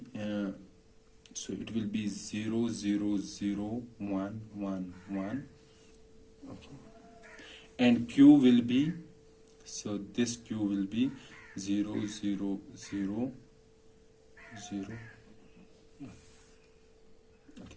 so it will be 0, 0, 0, 1, 1, 1. Okay, and q will be, so this q will be 0, 0, 0, 0.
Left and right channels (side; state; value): both; identical; correlation 1.00